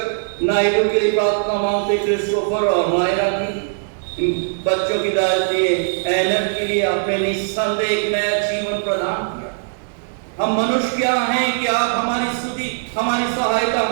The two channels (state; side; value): silent; left; digital silence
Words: नायडू के लिए प्रार्थना मांगते, क्रिस्टोफर और मायरा की, बच्चों की दादी एनर के लिए आपने निस्संदेह एक नया जीवन प्रदान किया। हम मनुष्य क्या हैं कि आप हमारी स्तुति, हमारी सहायता,